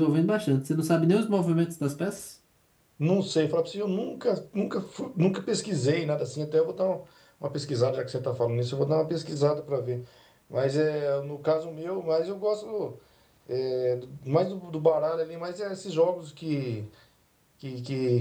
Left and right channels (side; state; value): both; identical; correlation 1.00